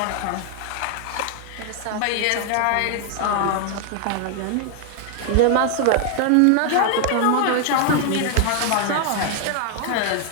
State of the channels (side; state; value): both; different; correlation 0.00